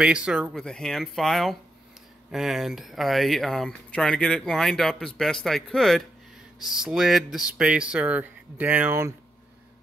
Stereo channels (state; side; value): normal; both; correlation 0.82